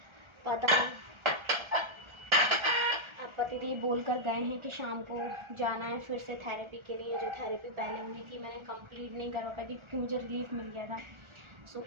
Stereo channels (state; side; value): late; left; 1.4 ms